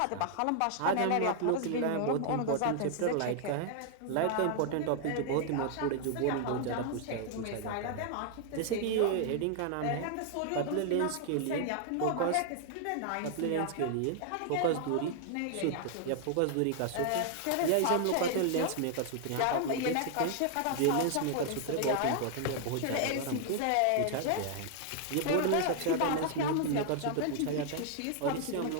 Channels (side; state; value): both; different; correlation 0.00